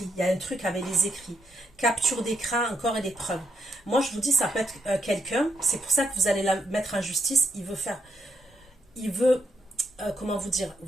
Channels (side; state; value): both; normal; correlation 0.77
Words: Il y a un truc avec les écrits. Capture d'écran, encore et des preuves. Moi, je vous dis, ça peut être quelqu'un. C'est pour ça que vous allez la mettre en justice. Il veut, comment vous dire,